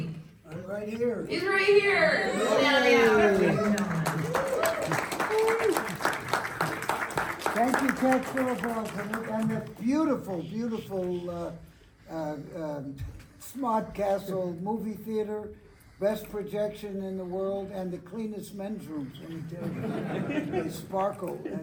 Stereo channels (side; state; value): both; identical; correlation 1.00